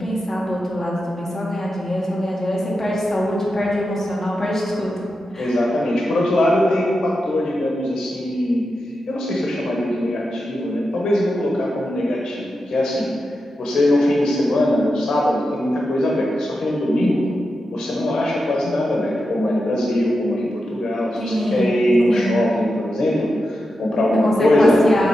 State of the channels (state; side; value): normal; both; correlation 0.89